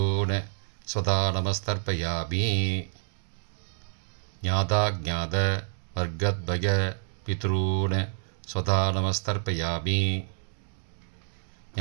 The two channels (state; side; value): silent; left; digital silence